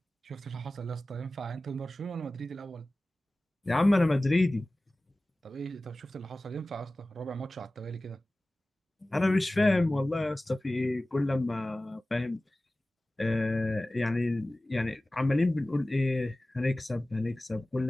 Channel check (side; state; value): both; normal; correlation 0.97